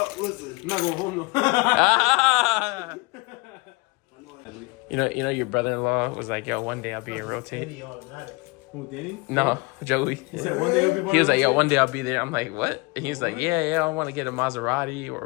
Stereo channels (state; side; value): quieter; right; 26.4 dB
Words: listening. I'm not going home though. Ah! You know, your brother-in-law was like, yo, one day I'll be in Rotate. Who, Danny? No, Joey. He said one day he'll be He was like, yo, one day I'll be there. I'm like, what? And he's like, yeah, I want to get a Maserati or